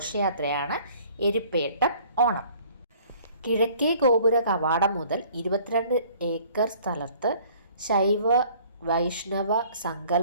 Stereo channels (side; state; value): both; inverted; correlation -0.54